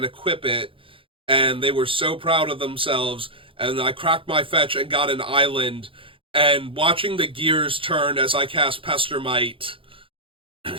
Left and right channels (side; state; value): left; late; 0.25 ms